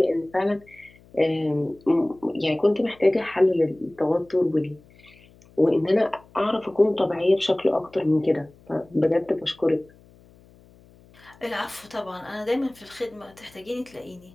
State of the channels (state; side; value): noise; left; hum, 27 dB below the sound